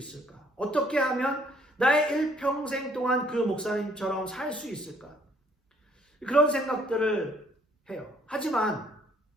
어떻게 하면 나의 일평생 동안 그 목사님처럼 살 수 있을까? 그런 생각들을 해요.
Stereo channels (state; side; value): normal; both; correlation 0.63